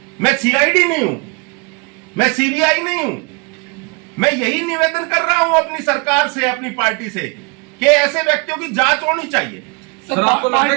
मैं सीआईडी नहीं हूं, मैं सीबीआई नहीं हूं। मैं यही निवेदन कर रहा हूं अपनी सरकार से, अपनी पार्टी से, कि ऐसे व्यक्तियों की जांच होनी चाहिए। सर, आपको लगता है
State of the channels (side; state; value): left; quieter; 30.9 dB